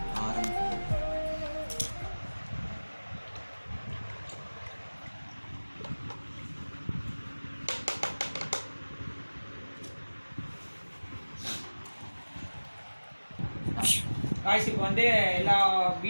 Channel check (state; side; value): inverted; both; correlation -1.00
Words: காய்ஸ் இப்போ வந்து எல்லா